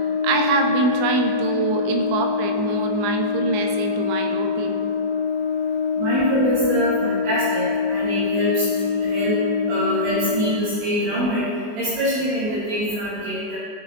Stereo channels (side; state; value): left; late; 24 ms